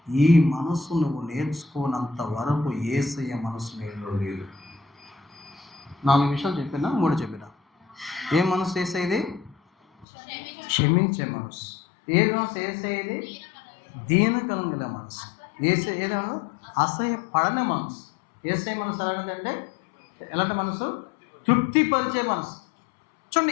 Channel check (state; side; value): drops out; right; at 10.1 s